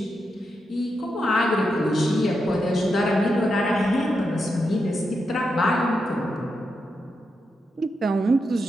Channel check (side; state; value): both; normal; correlation 0.85